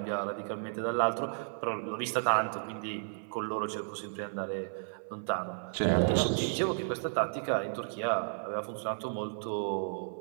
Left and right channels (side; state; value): left; silent; 55 dB below the other